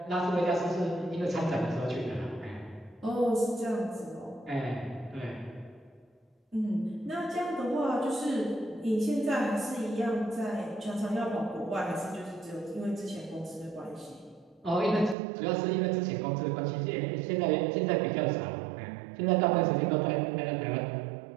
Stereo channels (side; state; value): left; drops out; at 15.2 s